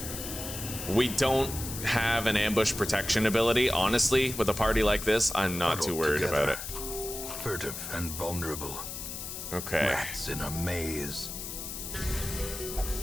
We don't have an ambush protection ability. Honestly, with a party like this, I'm not too worried about it. Furtive and vulnerable. Okay. Rats in a maze.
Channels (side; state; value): left; noise; hiss, 8 dB below the sound